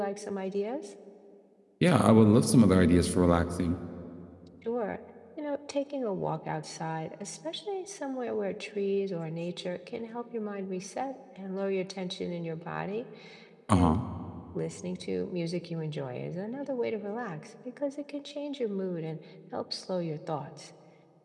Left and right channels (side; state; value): both; identical; correlation 1.00